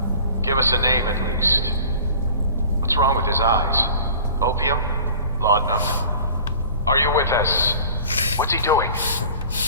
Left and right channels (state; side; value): inverted; both; correlation -0.44